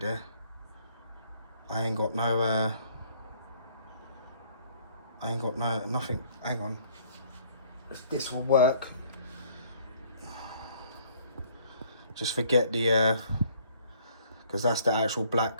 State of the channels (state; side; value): inverted; both; correlation -0.60